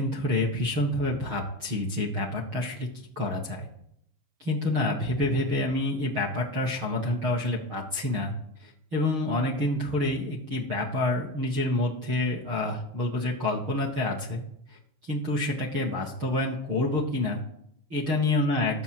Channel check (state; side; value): late; left; 6.4 ms